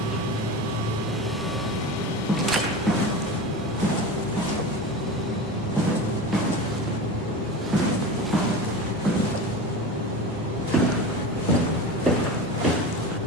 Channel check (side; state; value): both; normal; correlation 0.29